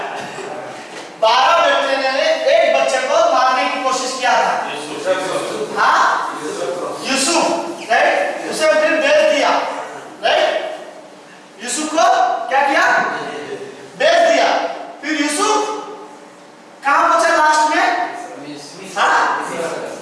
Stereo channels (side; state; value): both; identical; correlation 1.00